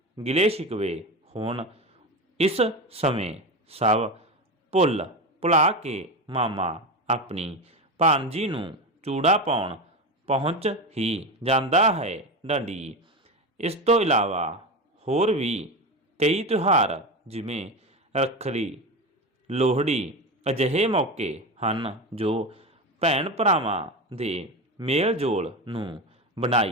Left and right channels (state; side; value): normal; both; correlation 0.20